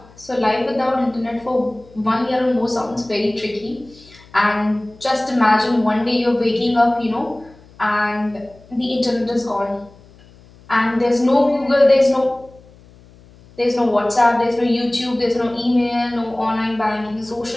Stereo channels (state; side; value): noise; left; hum, 25 dB below the sound